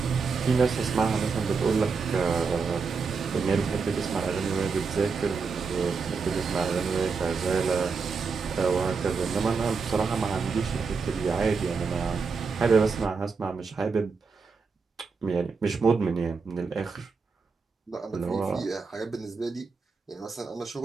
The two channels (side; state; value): left; quieter; 5.0 dB